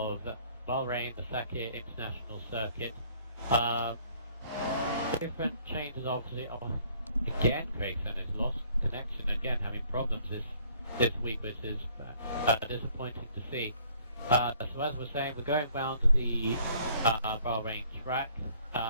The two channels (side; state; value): both; inverted; correlation -0.60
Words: Bahrain, the Sakir International Circuit. Different changes, obviously. Again, Craig Senna's lost connection again, having problems this week, which is disappointing to see. So as we're saying, we're going round the Bahrain track